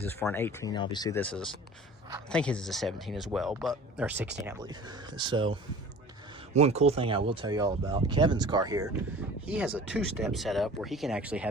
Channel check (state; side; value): normal; both; correlation 0.42